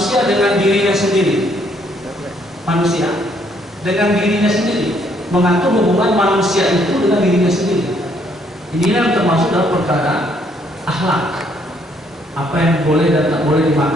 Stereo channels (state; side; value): normal; both; correlation 0.68